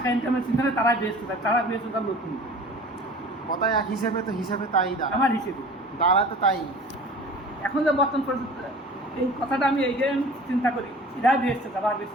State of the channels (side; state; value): both; normal; correlation 0.43